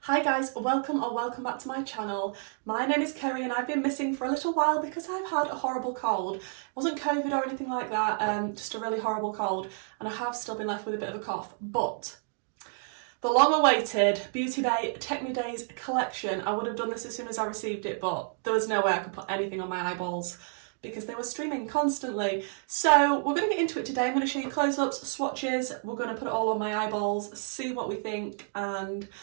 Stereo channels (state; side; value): silent; left; 58 dB below the other